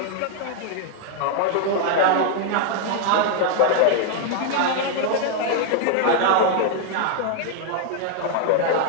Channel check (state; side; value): different; both; correlation 0.00